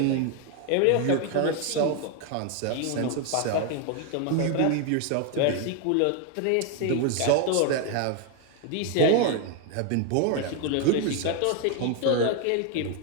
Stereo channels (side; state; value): both; different; correlation 0.01